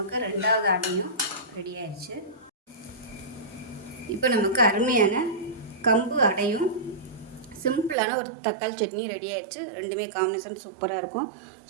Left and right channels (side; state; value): left; drops out; at 8.0 s